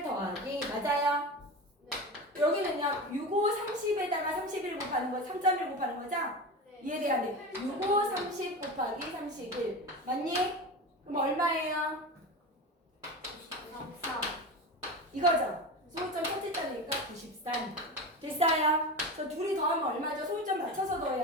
더하기 맞아요? 여기는요 65, 30에다가 31 곱하는 거 3.1 곱하는 거죠? 이해돼야 돼. 65, 30 곱하기 31 맞니? 그럼 얼마예요? 93. 이거죠? 소울점 첫째 자리니까 93 됐어요? 저 둘이 더하면 얼마죠? 소울점 맞춰서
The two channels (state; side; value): normal; both; correlation 0.26